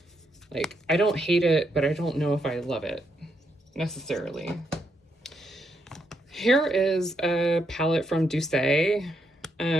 Like, I don't hate it, but I don't know if I love it necessarily. Here is a palette from Douce.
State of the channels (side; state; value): both; normal; correlation 0.78